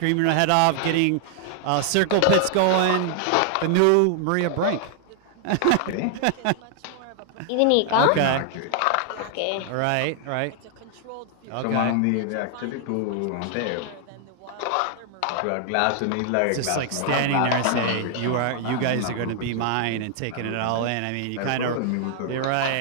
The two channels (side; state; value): both; different; correlation 0.00